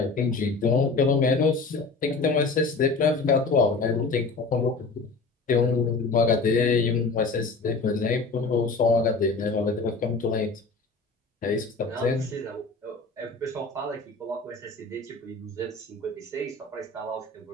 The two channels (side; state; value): right; quieter; 4.0 dB